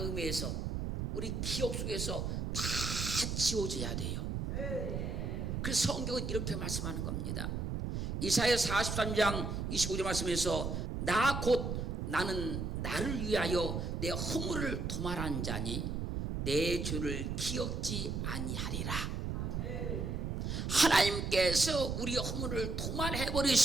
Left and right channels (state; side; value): noise; right; rumble, 2 dB below the sound